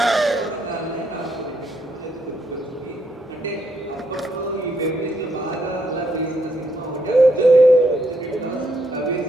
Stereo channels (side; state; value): both; normal; correlation 0.75